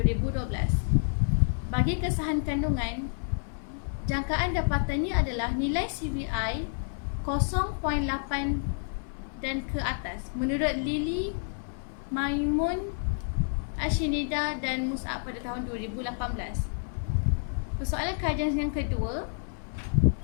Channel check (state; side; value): silent; right; 58 dB below the other